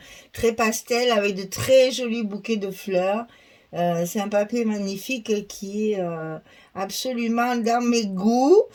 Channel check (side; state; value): both; identical; correlation 1.00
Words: très pastel, avec de très jolis bouquets de fleurs. C'est un papier magnifique qui est absolument dans mes goûts.